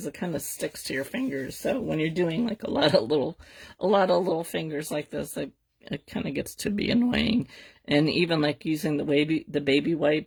it kind of sticks to your fingers. So when you're doing like a lot of little fingers like this, it kind of gets to be annoying. And even like using the baby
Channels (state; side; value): identical; both; correlation 1.00